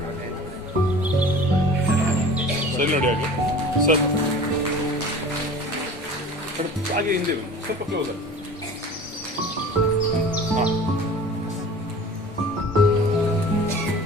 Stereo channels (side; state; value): both; normal; correlation 0.41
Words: ಸರಿ ನೋಡಿ ಹಾಗೆ ಸರ್ ಹಾಗೆ ಹಿಂದೆ ಸ್ವಲ್ಪ ಕ್ಲೋಸ್ ಹಾಂ